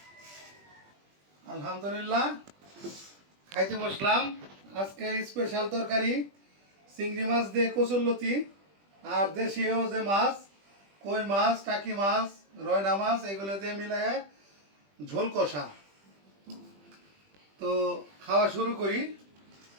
আলহামদুলিল্লাহ খাইতে বসলাম। আজকে স্পেশাল তরকারি চিংড়ি মাছ দিয়ে কচুরলতি আর দেশীয় যে মাছ কই মাছ, টাকি মাছ, রয়না মাছ এগুলো দিয়ে মিলায় ঝোল কষা। তো খাওয়া শুরু করি।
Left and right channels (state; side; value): late; left; 20 ms